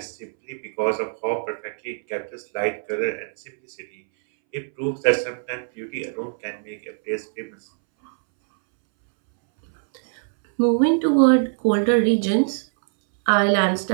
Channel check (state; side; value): silent; left; 64 dB below the other